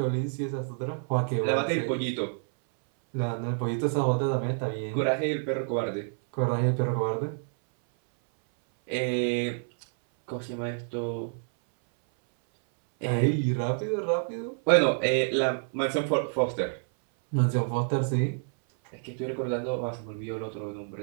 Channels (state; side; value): silent; left; 59 dB below the other